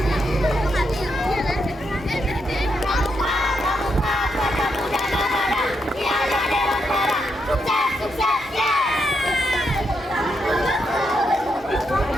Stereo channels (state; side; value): normal; both; correlation 0.81